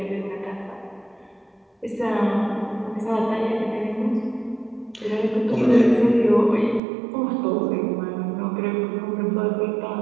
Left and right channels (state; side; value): drops out; left; at 6.8 s